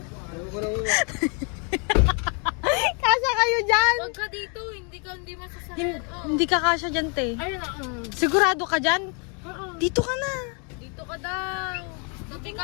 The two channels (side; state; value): right; quieter; 37.6 dB